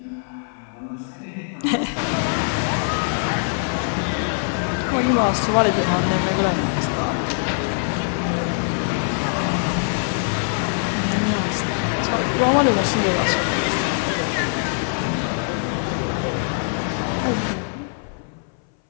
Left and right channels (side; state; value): right; silent; 60 dB below the other